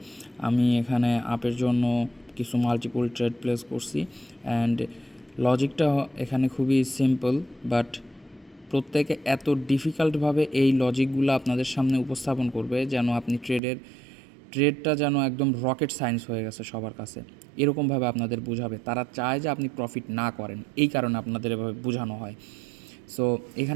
আমি এখানে আপের জন্য কিছু মাল্টিপল ট্রেড প্লেস করছি অ্যান্ড লজিকটা এখানে খুবই সিম্পল, বাট প্রত্যেকে এত ডিফিকাল্টভাবে এই লজিকগুলো আপনাদের সামনে উপস্থাপন করবে যেন আপনি ট্রেডটা যেন একদম রকেট সায়েন্স হয়ে গেছে সবার কাছে। এরকমভাবে আপনাদের বোঝাবে, তারা চায় যে আপনি প্রফিট না করেন, এই কারণে আপনাদের এভাবে বোঝানো হয়। সো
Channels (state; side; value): drops out; left; at 13.6 s